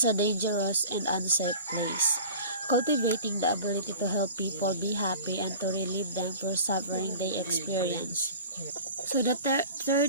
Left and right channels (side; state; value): both; inverted; correlation -0.41